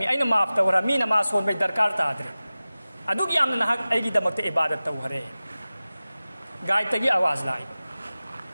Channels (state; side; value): inverted; both; correlation -0.97